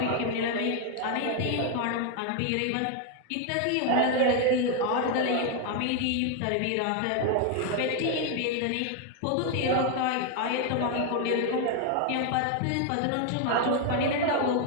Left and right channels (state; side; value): different; both; correlation 0.01